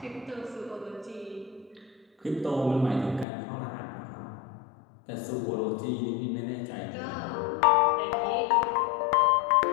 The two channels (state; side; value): drops out; right; at 3.2 s